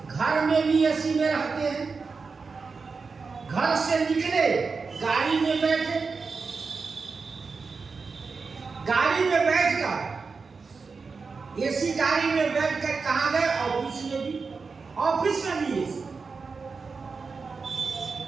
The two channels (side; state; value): left; quieter; 4.7 dB